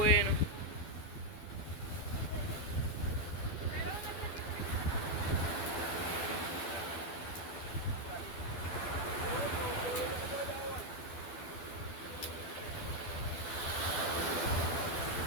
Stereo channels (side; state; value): right; late; 12 ms